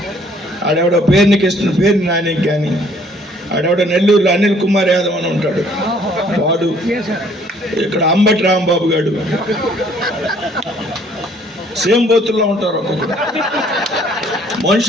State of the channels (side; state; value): both; normal; correlation 0.60